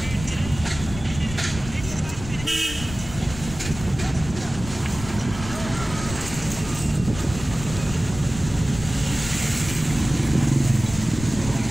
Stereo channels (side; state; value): left; noise; rumble, 11 dB below the sound